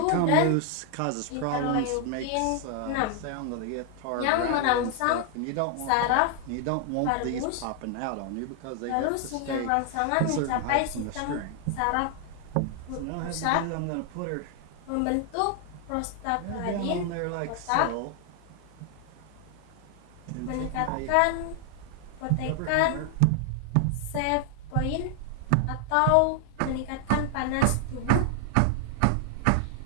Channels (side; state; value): both; different; correlation 0.00